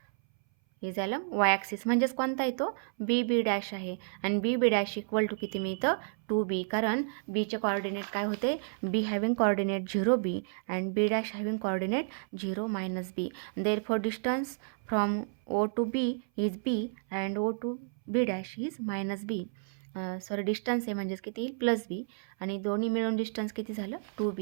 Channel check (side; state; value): left; silent; 57 dB below the other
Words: म्हणजेच कोणता येतो? बी डॅश आहे आणि बी डॅश इक्वल टू किती मिळतं? 2b. कारण बीचे कॉर्डिनेट काय होते? B having coordinate 0b and B dash having coordinate 0 - b. Therefore distance from O to B is b and O to B dash is -b. Distance आहे म्हणजेच किती येईल? +b आणि दोन्ही मिळून डिस्टन्स किती झालं?